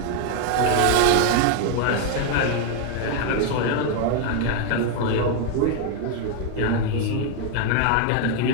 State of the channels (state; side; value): different; both; correlation 0.01